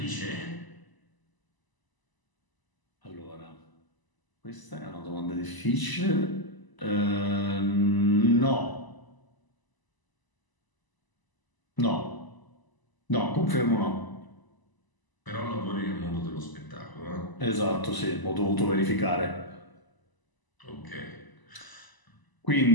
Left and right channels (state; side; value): late; right; 1.0 ms